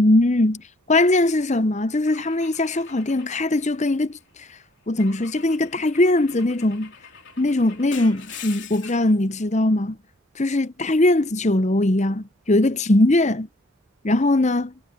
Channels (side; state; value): both; normal; correlation 0.64